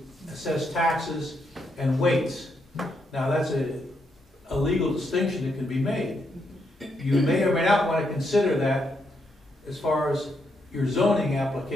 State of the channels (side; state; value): both; normal; correlation 0.79